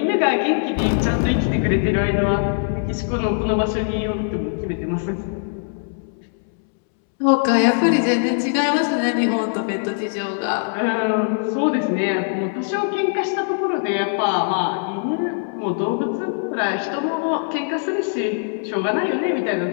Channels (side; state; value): right; silent; 64 dB below the other